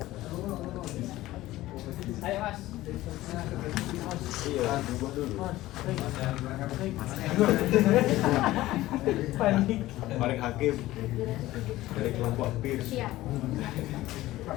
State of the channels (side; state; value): right; quieter; 16.5 dB